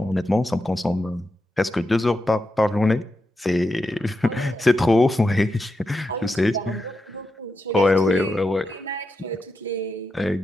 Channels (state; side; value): normal; both; correlation 0.87